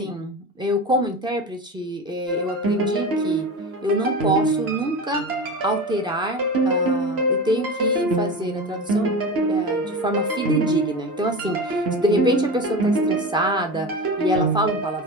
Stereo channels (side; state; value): both; normal; correlation 0.27